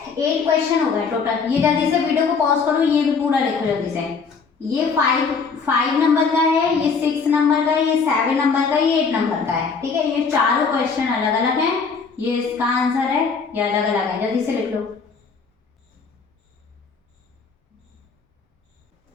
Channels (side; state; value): right; quieter; 5.2 dB